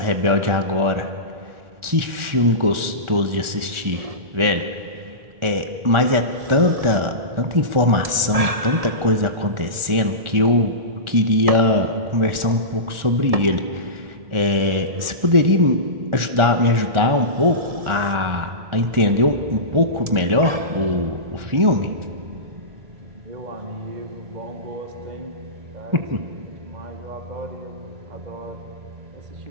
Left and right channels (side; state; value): left; late; 1.4 ms